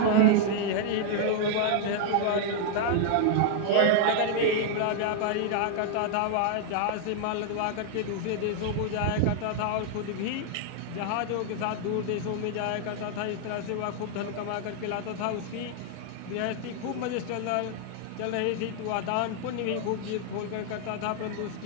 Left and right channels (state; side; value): different; both; correlation 0.00